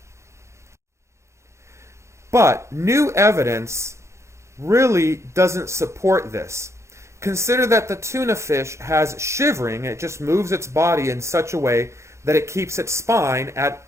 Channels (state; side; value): late; left; 0.14 ms